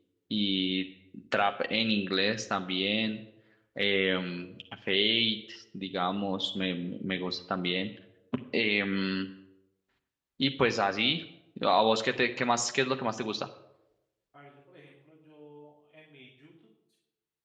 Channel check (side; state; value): both; identical; correlation 1.00